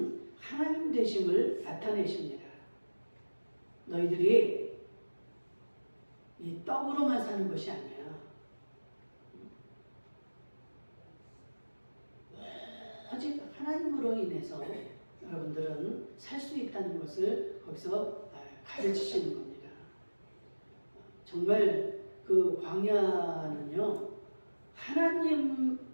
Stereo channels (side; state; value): both; inverted; correlation -1.00